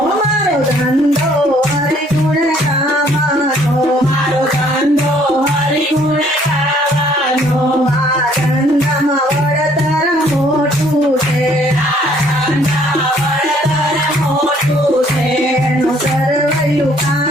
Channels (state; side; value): normal; both; correlation 0.61